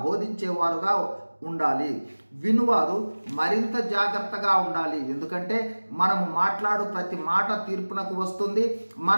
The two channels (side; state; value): both; inverted; correlation -1.00